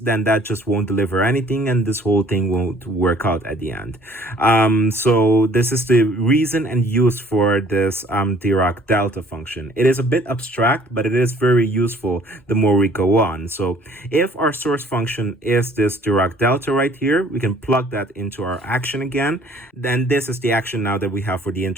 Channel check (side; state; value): both; normal; correlation 0.56